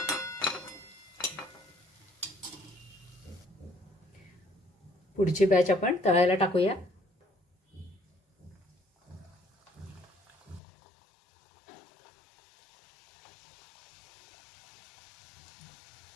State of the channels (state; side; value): drops out; right; at 10.6 s